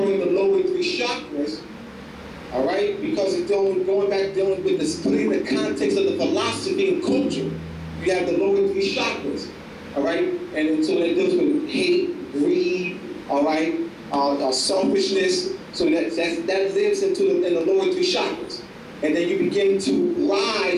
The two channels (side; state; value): both; identical; correlation 1.00